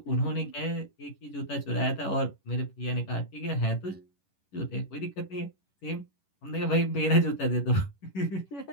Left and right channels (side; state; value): right; late; 11 ms